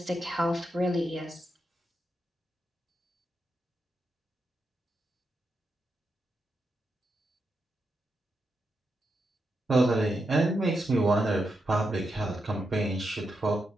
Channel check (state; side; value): normal; both; correlation 0.85